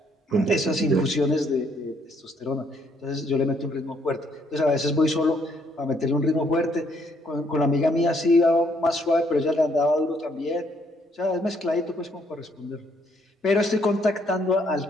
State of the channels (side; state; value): both; normal; correlation 0.69